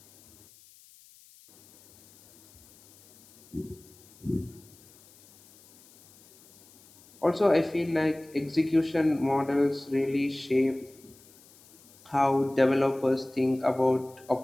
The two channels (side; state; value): left; noise; hiss, 26 dB below the sound